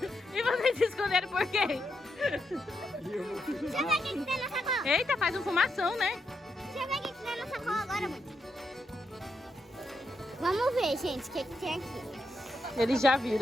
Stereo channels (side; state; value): both; normal; correlation 0.82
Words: E vocês se esconderam por quê? Deixa eu ver o que tem na sacola. Eita, faz um fumação, né? Deixa eu ver o que tem na sacola agora, mãe. Vamos ver, gente, o que tem aqui. Eles já